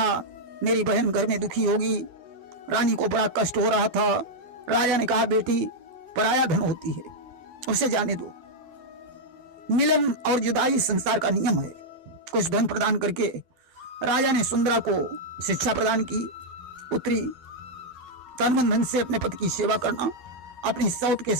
मेरी बहन घर में दुखी होगी, रानी को बड़ा कष्ट हो रहा था। राजा ने कहा, बेटी पराया धन होती है, उसे जाने दो। मिलन और जुदाई संसार का नियम है। कुछ धन प्रदान करके राजा ने सुंदरा को शिक्षा प्रदान की। पुत्री तन मन धन से अपने पति की सेवा करना, अपनी सौत के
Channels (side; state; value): left; late; 12 ms